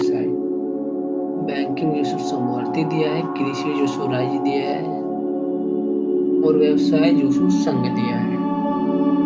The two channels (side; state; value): both; identical; correlation 1.00